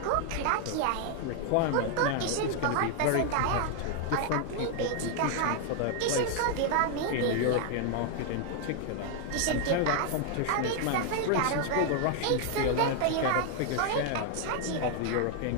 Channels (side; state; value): both; different; correlation 0.00